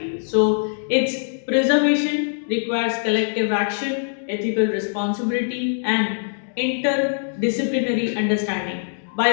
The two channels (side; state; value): right; silent; digital silence